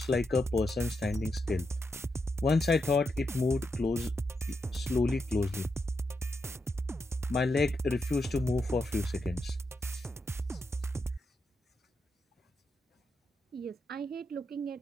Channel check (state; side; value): normal; both; correlation 0.84